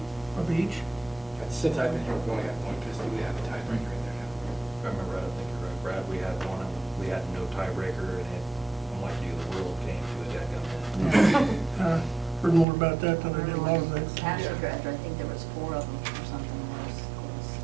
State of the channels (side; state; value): left; drops out; at 12.7 s